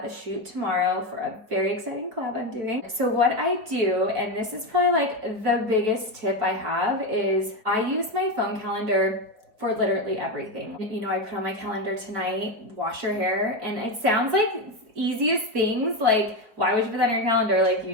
a shoot tomorrow for a very exciting collab I'm doing. So what I do, and this is probably like the biggest tip I have, is I use my phone calendar for literally everything. You know, I put on my calendar tonight, wash your hair, and it sounds like easiest things, like why would you put that on your calendar? Like, you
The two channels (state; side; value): late; left; 4.8 ms